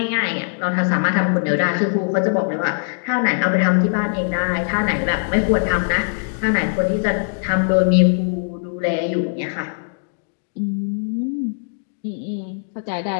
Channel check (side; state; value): right; silent; digital silence